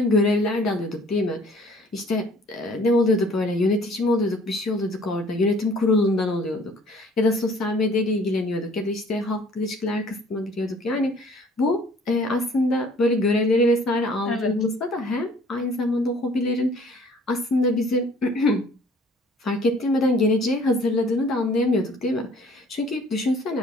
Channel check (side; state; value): both; normal; correlation 0.55